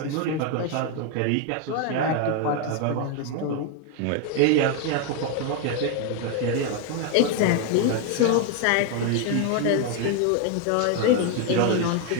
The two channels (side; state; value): both; different; correlation 0.01